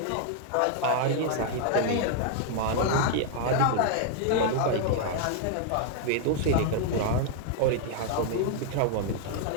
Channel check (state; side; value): different; both; correlation 0.00